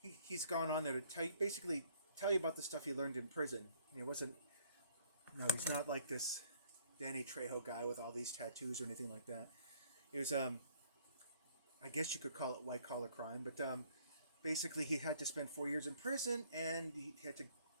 he's gone on there to basically tell you about the stuff he learned in prison. And it wasn't no, he's not like this Danny Trejo guy with all these tattoos or anything like that. It was I guess you could call it white collar crime, but basically he had to spend 4 years in prison, and he had to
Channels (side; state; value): both; inverted; correlation -0.61